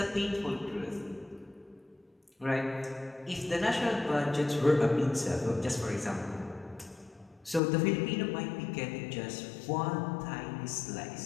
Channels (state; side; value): drops out; right; at 7.6 s